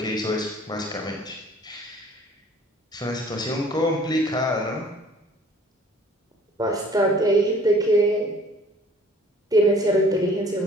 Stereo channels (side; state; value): both; normal; correlation 0.53